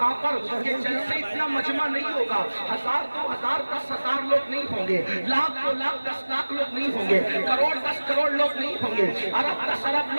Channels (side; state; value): both; inverted; correlation -1.00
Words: پر یہ جلسے اتنا مجمع نہیں ہوگا, 1000 2000 10,000 لوگ نہیں ہوں گے, لاکھ 2 لاکھ 10 لاکھ لوگ نہیں ہوں گے, کروڑ 10 کروڑ لوگ نہیں ہوں گے, ارب 10 ارب